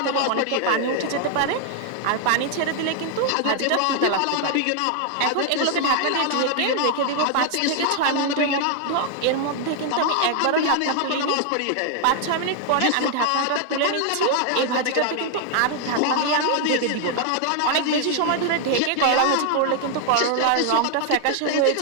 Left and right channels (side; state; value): both; different; correlation 0.00